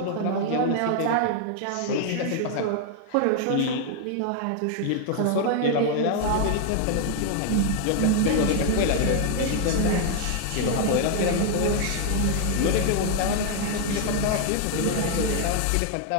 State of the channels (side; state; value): both; different; correlation 0.00